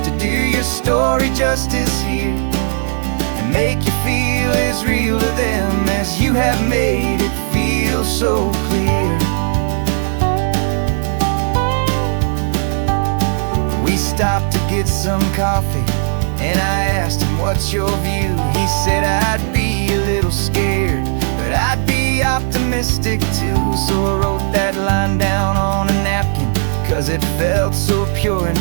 do your story justice here, and make you feel as real to them as you have made it feel so clear. We stopped to get some coffee, and I asked him, what's your view? He said, I'd be a little scared, but I'd be optimistic too. So I wrote that line down on a napkin, 'cause it felt so pure and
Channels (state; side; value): silent; left; digital silence